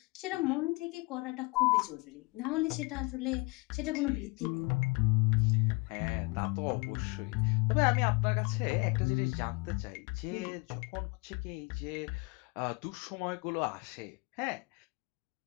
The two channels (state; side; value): quieter; right; 26.6 dB